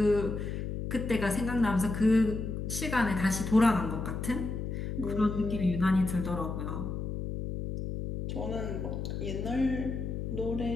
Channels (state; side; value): noise; left; hum, 4 dB below the sound